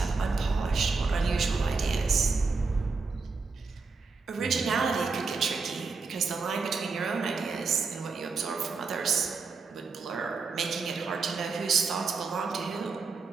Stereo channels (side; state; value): left; quieter; 4.5 dB